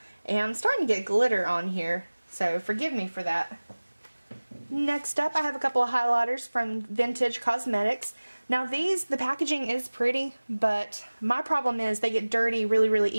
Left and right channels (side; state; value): both; inverted; correlation -1.00